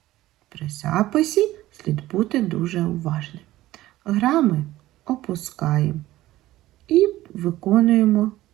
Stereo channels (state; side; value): quieter; left; 15.9 dB